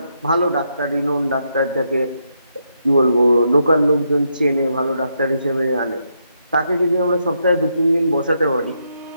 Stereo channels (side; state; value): both; inverted; correlation -0.79